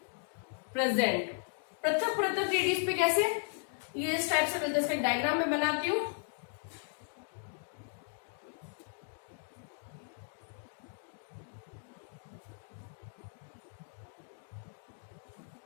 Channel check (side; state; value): right; silent; 54 dB below the other